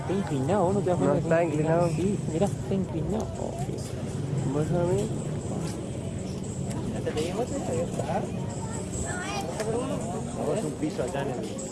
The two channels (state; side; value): identical; both; correlation 1.00